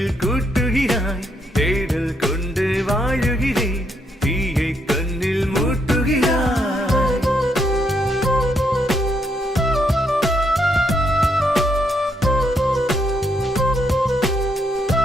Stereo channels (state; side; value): normal; both; correlation 0.75